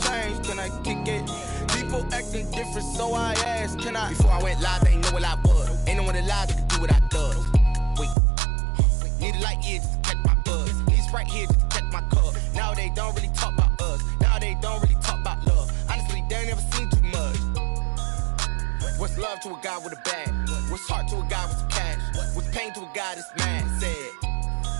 can I kick it? People acting different, so I asked, can I? Before I went live, they ain't know what I was. Ain't no one alive that could do what I does. Wait, need a light here just to catch my buzz. Need Sprite here just to catch my cup. Now they don't really talk about us. Now they don't really talk about love. Honestly, they ain't never seen too much. What's love to a guy with a bag? What's heart to a guy with some cash? What's pain to a guy that's mad? Said.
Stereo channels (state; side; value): drops out; left; at 8.2 s